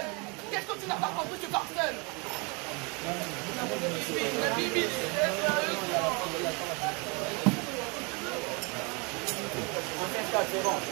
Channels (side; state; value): left; quieter; 30.9 dB